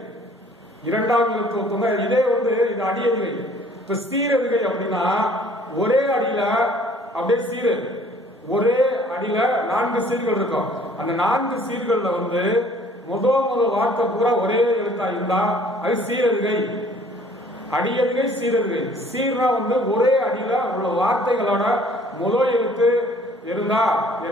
இரண்டாவது எழுத்து ஒத்து வந்தா இதே வந்து இது அடி எதுகை. இப்ப சீர் எதுகை அப்படின்னா ஒரே அடியில அப்படியே சீரு, ஒரே அடியில 4 சீர்கள் இருக்கும். அந்த 4 சீர்கள்ல வந்து முதல் வார்த்தை பூரா ஒரே எழுத்தா இருந்தா அது சீரெதுகை. அடியதுகை சீரெதுகை. சீர்னா வந்து ஒரே அடியில உள்ள வார்த்தைகளோட முதல் எழுத்து இருந்தா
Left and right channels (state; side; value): normal; both; correlation 0.56